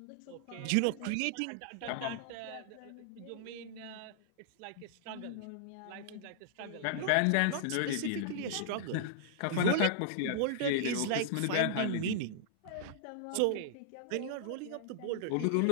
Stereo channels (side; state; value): both; different; correlation -0.01